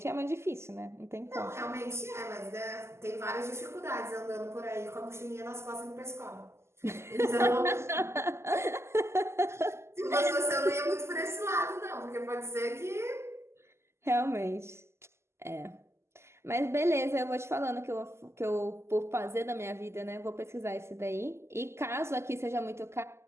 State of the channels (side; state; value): left; late; 0.13 ms